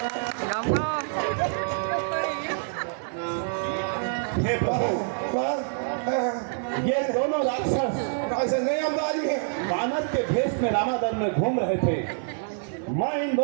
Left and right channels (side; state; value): left; silent; digital silence